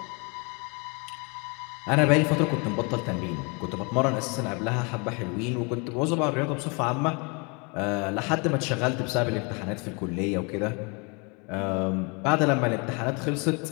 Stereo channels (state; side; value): quieter; right; 31.8 dB